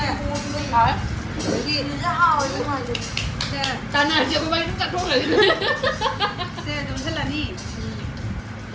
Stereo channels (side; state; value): both; identical; correlation 1.00